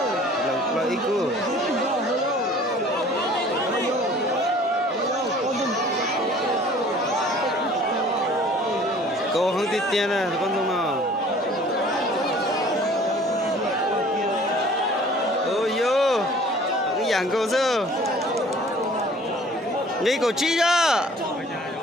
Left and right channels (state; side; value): normal; both; correlation 0.50